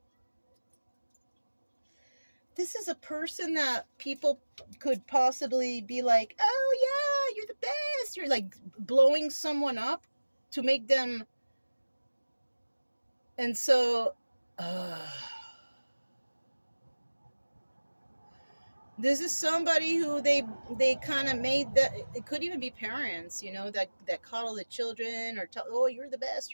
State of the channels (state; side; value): inverted; both; correlation -1.00